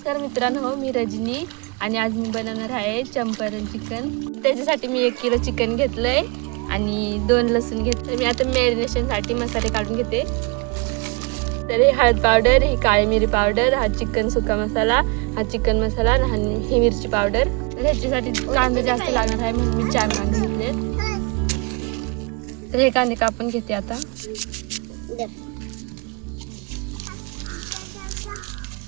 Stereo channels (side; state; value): left; quieter; 30.5 dB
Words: मित्रांनो, मी रजनी आणि आज मी बनवणार आहे चंपारण चिकन. त्याच्यासाठी मी 1 किलो चिकन घेतलंय आणि 2 लसूण घेतले. मी आता मॅरिनेशनसाठी मसाले काढून घेते. तर ही हळद पावडर, ही काळी मिरी पावडर, हा चिकन सुका मसाला, हा चिकन मसाला आणि ही मिरची पावडर. तर ह्याच्यासाठी कांदा जास्त लागणार आहे म्हणून मी 4 कांदे घेतलेत. तर हे कांदे कापून घेते आता.